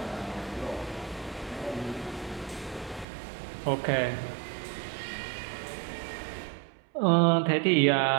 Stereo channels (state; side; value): drops out; left; at 3.1 s